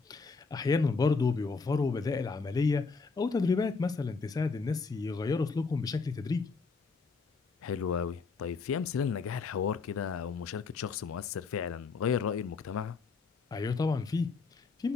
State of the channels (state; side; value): quieter; right; 4.6 dB